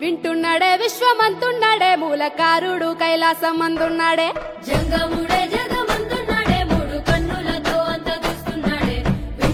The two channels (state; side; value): identical; both; correlation 1.00